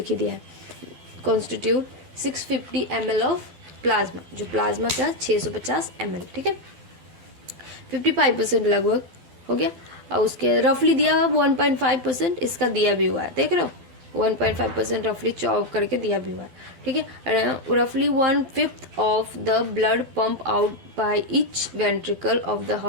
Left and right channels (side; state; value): left; late; 12 ms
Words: ही दिया है। कॉन्स्टिट्यूट 650 ml ऑफ प्लाज्मा, जो प्लाज्मा का 650 ml। ठीक है, 55% लगभग हो गया। और उसके रफली दिया हुआ 1.5% इसका दिया भी हुआ है, देख रहे हो 1.5% रफली चॉप करके दिया भी हुआ है। ठीक है, रफली 1/5 of the blood pump out by each ventricle of the